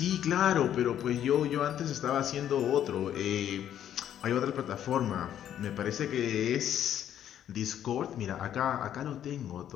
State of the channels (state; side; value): quieter; right; 10.5 dB